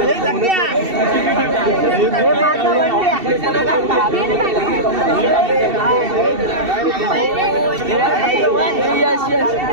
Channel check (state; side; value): late; left; 2.7 ms